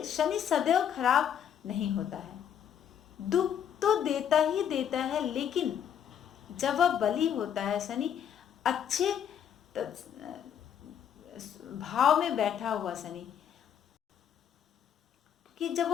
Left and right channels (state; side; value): quieter; right; 8.9 dB